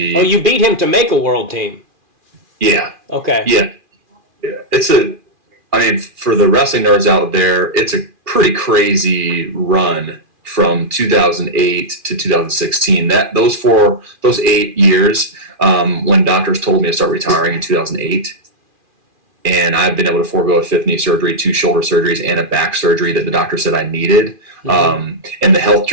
You beat him to make a world team? Yeah. Okay. Yeah. For the wrestling nerds out there, it's a pretty crazy run from 2008 to 2016. Those 8 years, when doctors told me to start retiring in 2008, and I've been able to forego a 5th knee surgery, 2 shoulder surgeries, and a back surgery that the doctor said I needed, and the health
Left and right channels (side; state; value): left; late; 2.4 ms